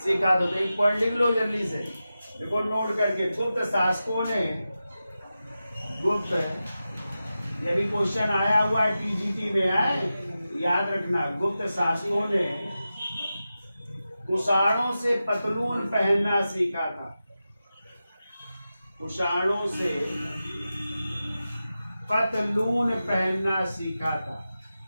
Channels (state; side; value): inverted; both; correlation -0.93